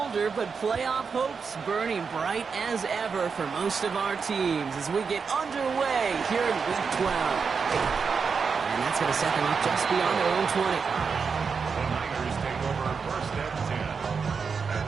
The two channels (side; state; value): left; quieter; 5.5 dB